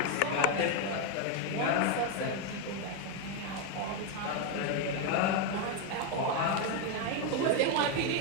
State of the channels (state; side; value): different; both; correlation 0.02